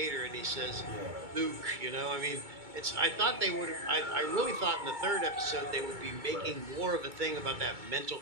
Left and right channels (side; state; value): left; late; 2.3 ms